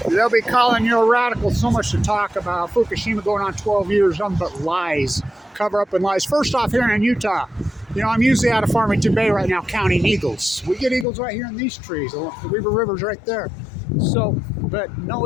They'll be calling you a radical. So much to talk about. Fukushima going on 12 years, nothing but lies. Cover up and lies. First off, here in Utah, you know, I'm usually out of Farmington Bay right now counting eagles. We get eagles right here in these trees. The Weaver River's right there. So, but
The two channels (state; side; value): drops out; right; at 11.1 s